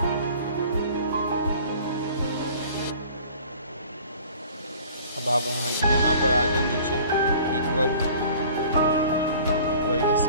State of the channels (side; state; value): both; inverted; correlation -0.48